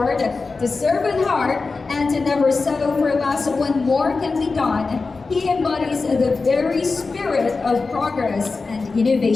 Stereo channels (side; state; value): right; quieter; 4.1 dB